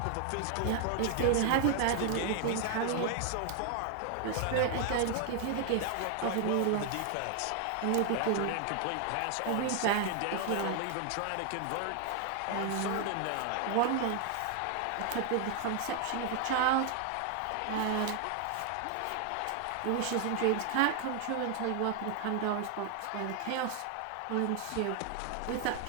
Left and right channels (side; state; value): both; different; correlation 0.00